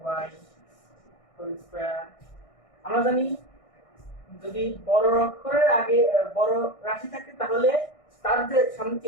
y হোল স্কয়ার, আমরা জানি যদি বড় অক্ষরের আগে বড় রাশি থাকে তাহলে তার যে সামনে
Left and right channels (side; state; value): right; late; 1.6 ms